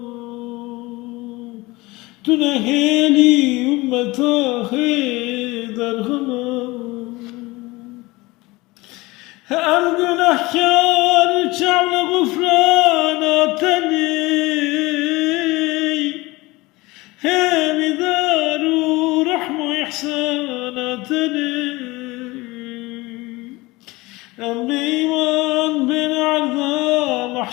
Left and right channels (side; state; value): right; quieter; 21.8 dB